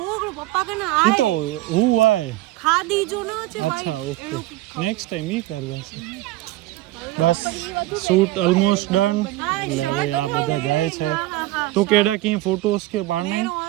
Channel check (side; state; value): left; quieter; 17.0 dB